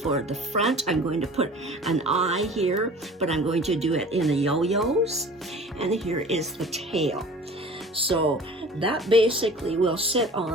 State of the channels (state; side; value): normal; both; correlation 0.43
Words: for the front. I'm going to put an eye here, but I'm going to do it in the yo-yos. And here is the tail. So that basically will sit